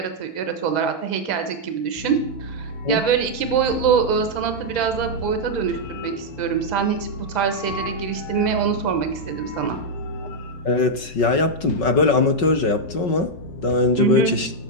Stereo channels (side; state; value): right; late; 5.3 ms